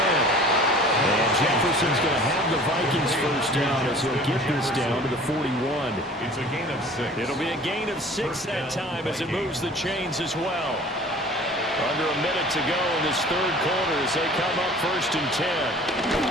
And Jefferson's going to have the Vikings 1st down as he'll get this down to the 41. It's a gain of 6. It'll be a gain of 6 that time as it moves the chains as well. Under a minute to go in this 3rd quarter as they come up 1st and 10.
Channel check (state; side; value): normal; both; correlation 0.46